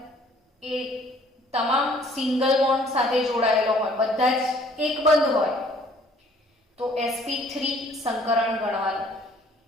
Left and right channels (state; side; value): normal; both; correlation 0.58